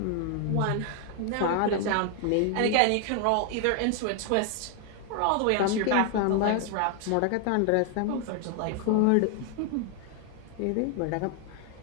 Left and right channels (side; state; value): both; different; correlation 0.00